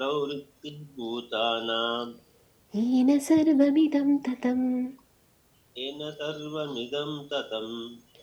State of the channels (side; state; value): both; identical; correlation 1.00